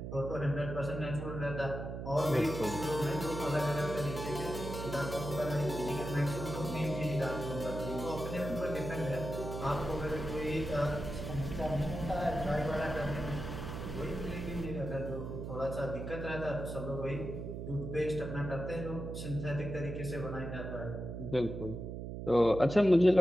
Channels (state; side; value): noise; right; hum, 6 dB below the sound